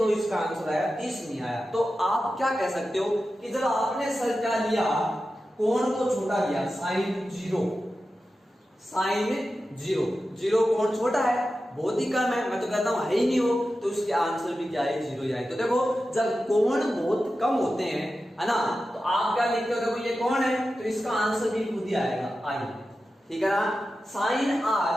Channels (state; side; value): normal; both; correlation 0.92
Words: इसका आंसर आया, 30 नहीं आया। तो आप क्या कह सकते हो कि जब आपने सर क्या लिया, कोण को छोटा लिया, साइन 0, साइन 0 कोण छोटा है, बहुत ही कम है, मैं तो कहता हूं है ही नहीं हो, तो उसके आंसर भी क्या है, 0 ही आए। तो देखो, जब कोण बहुत कम होते हैं, है ना, तो आप क्या लिखते हो, देखो ये कोण है तो इसका आंसर भी खुद ही आएगा, आई, ठीक है ना। साइन